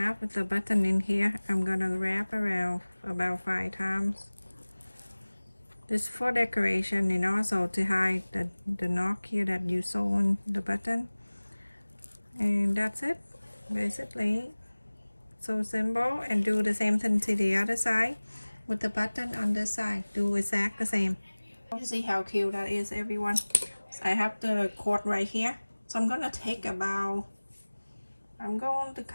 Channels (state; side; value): inverted; both; correlation -1.00